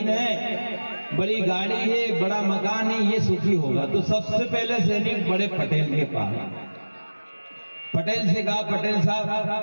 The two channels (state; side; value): inverted; both; correlation -1.00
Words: है, बड़ी गाड़ी है, बड़ा मकान है, ये सुखी होगा। तो सबसे पहले सैनिक बड़े पटेल के पास, पटेल से कहा पटेल साहब